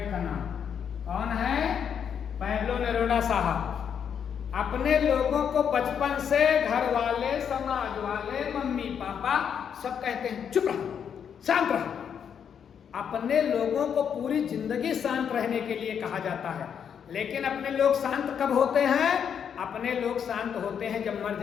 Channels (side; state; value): right; quieter; 7.8 dB